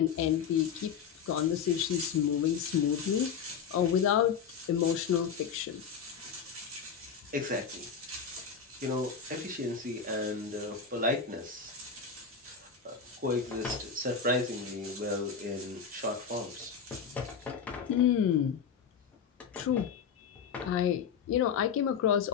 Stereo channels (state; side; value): quieter; right; 6.8 dB